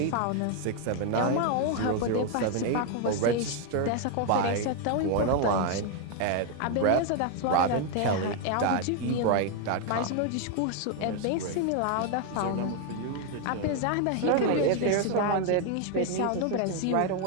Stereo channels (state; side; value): different; both; correlation 0.01